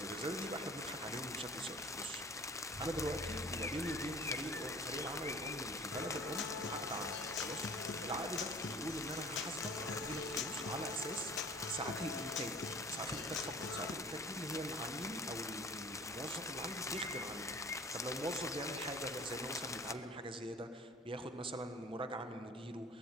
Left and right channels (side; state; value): both; normal; correlation 0.46